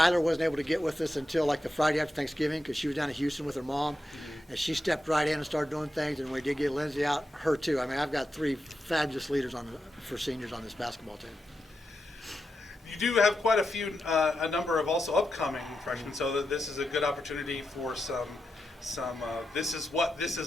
wasn't able to get with us until like the Friday after Thanksgiving because she was down in Houston with her mom, and she stepped right in and started doing things, and we did get Lindsay out, her too. I mean, I've got 3 fabulous leaders for seniors on this basketball team. You do have quite a number of also upcoming freshmen, so that this is a good opportunity for some this is what this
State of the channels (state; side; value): normal; both; correlation 0.88